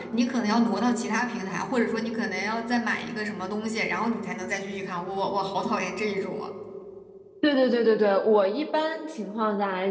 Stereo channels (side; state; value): both; identical; correlation 1.00